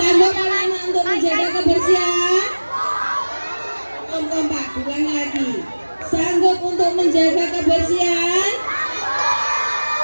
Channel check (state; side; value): inverted; both; correlation -1.00